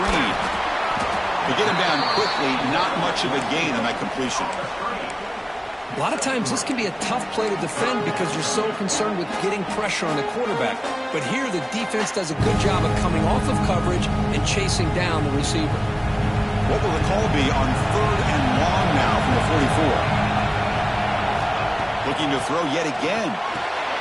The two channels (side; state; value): both; identical; correlation 1.00